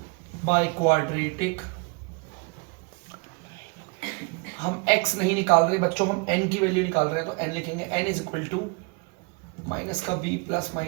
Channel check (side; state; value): left; quieter; 31.9 dB